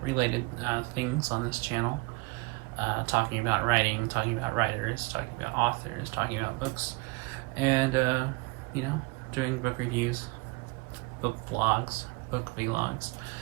related things on this channel. Talking about writing, talking about writers, talking about authors, talking about books, and doing book reviews, book vlogs, book vlogs,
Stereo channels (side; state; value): left; quieter; 25.8 dB